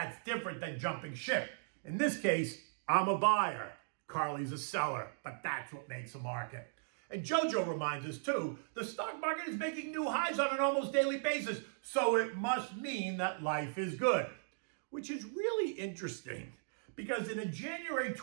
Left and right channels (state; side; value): silent; left; digital silence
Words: different than jumping ship. In this case, I'm a buyer. Carly's a seller, but that's what makes a market. And Jojo reminds us too, the stock market is making new highs on an almost daily basis, so it must mean that life is good. Which is really interesting, because in a January